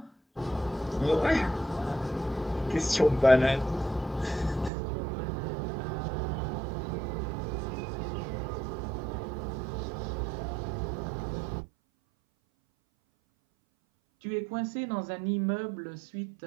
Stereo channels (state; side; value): drops out; left; at 4.7 s